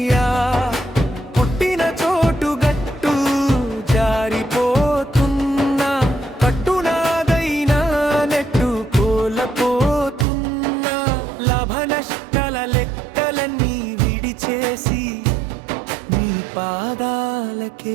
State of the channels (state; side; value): drops out; left; at 10.2 s